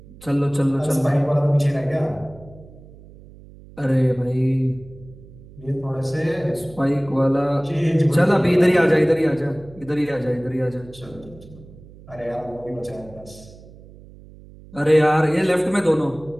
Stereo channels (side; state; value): right; noise; hum, 21 dB below the sound